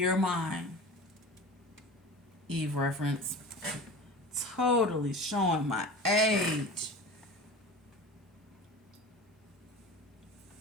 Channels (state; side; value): normal; both; correlation 0.34